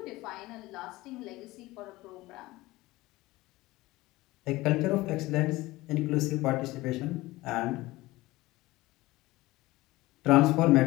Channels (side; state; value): right; quieter; 19.2 dB